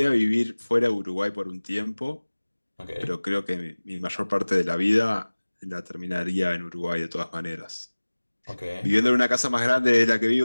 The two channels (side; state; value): both; inverted; correlation -1.00